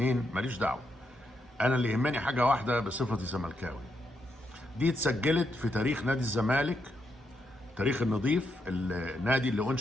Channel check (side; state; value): both; normal; correlation 0.81